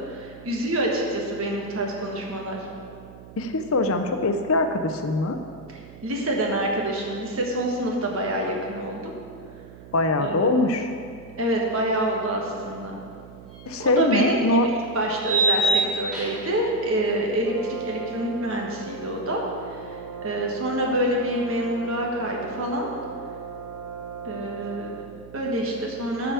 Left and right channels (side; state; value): right; noise; hum, 17 dB below the sound